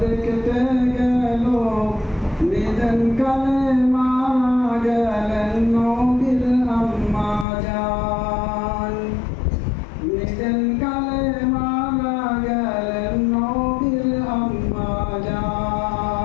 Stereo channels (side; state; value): right; drops out; at 7.5 s